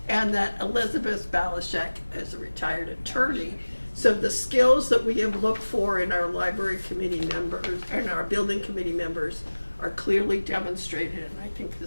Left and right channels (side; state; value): both; inverted; correlation -1.00